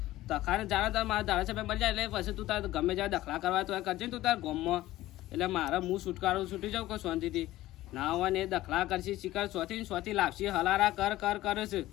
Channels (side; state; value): right; quieter; 16.0 dB